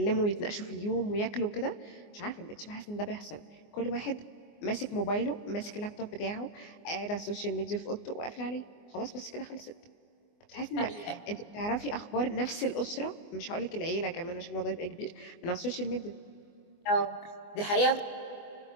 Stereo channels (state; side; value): late; right; 24 ms